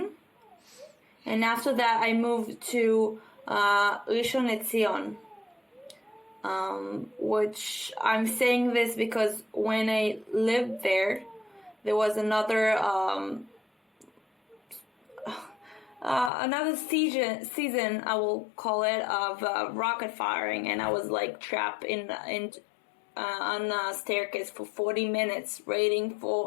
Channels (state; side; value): drops out; right; at 16.3 s